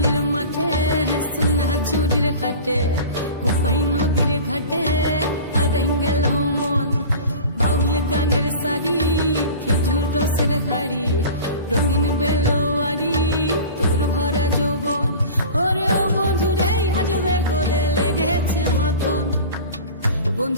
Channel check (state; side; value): inverted; both; correlation -0.37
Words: মাঠে সোনা ঝুড়ির হাটে কোপাই নদীর ঘাটে হারাই গেল মন বাউল গানের সারি খেজুর রসের হাড়ি রঙিন বেলোয়ারি তোর ভরা যৌবন ওরে ও বন্ধুরে আজবে ঘরে লেগেছে মাতন